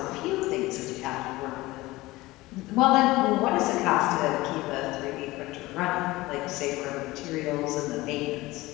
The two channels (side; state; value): right; quieter; 19.5 dB